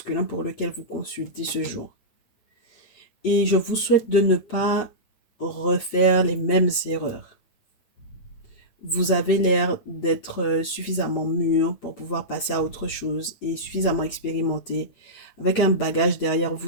pour lequel vous consultez ce jour. Et je vous souhaite de ne pas refaire les mêmes erreurs. Vous avez l'air d'être suffisamment mûr pour pouvoir passer à autre chose et suffisamment expérimenté avec un bagage derrière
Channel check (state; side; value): late; right; 9.0 ms